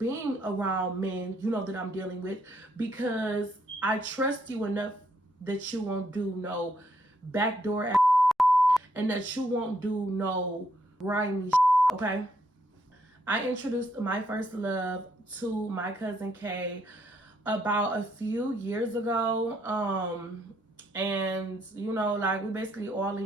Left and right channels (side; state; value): both; normal; correlation 0.73